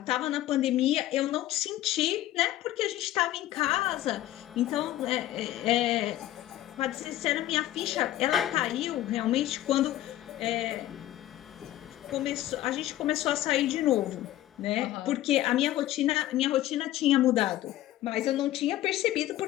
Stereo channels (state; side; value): quieter; right; 14.3 dB